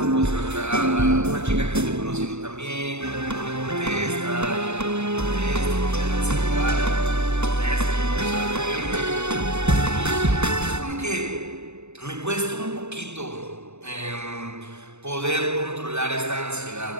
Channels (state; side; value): late; left; 0.81 ms